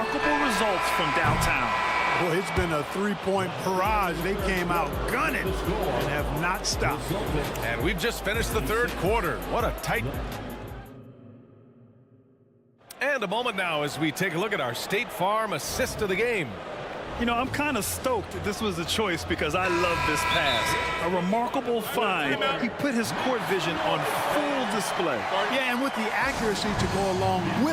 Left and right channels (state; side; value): identical; both; correlation 1.00